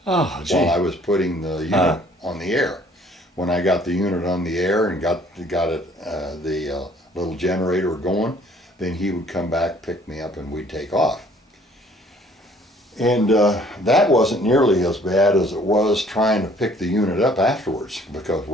Oh, gee. While I was putting the unit on the air. When I got the unit on the air and got it the little generator going, then he would come back, pick me up, and we'd take off. And that wasn't nearly as bad as it was trying to pick the unit up afterwards, because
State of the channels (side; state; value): both; normal; correlation 0.58